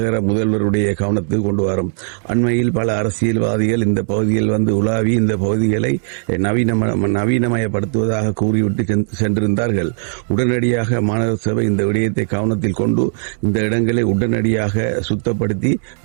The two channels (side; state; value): left; silent; 66 dB below the other